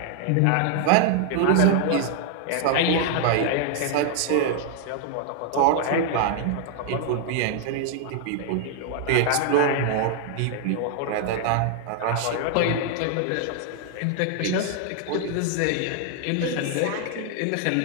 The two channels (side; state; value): both; different; correlation 0.00